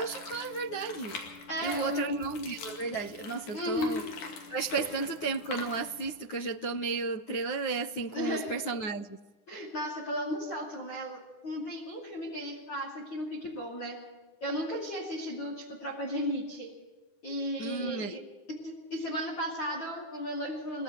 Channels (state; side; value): late; right; 9.8 ms